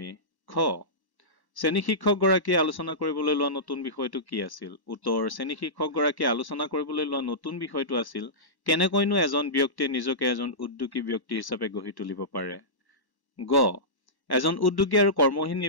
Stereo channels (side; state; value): right; late; 1.0 ms